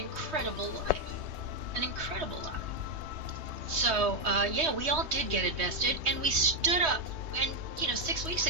life. So, we all did get invested, and we stood up. And 6 weeks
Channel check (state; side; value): late; left; 3.2 ms